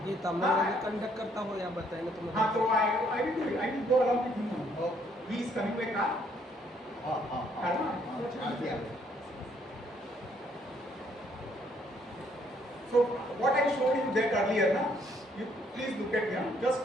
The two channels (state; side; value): normal; both; correlation 0.67